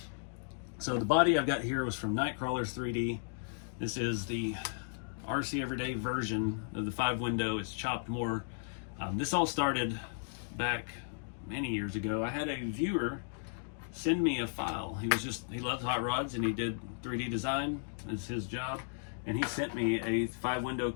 So the body I've got here was from Nightcrawlers 3D. This is the RC Everyday version of the 5-window. It's chopped more. This all started back many years ago. I had a viewer send me a file. He loves hot rods and he did 3D design. It's his job. And he sent me a 5-window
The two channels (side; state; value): right; silent; digital silence